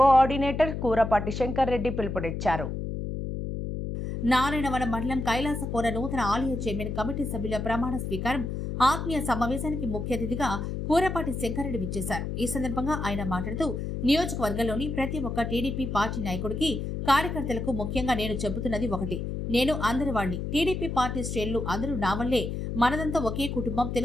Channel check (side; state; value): left; noise; hum, 4 dB below the sound